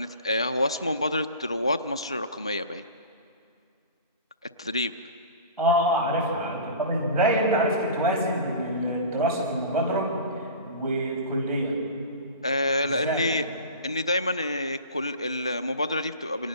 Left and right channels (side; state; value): both; inverted; correlation -0.36